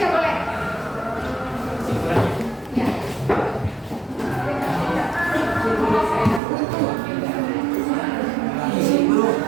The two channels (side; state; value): left; drops out; at 6.4 s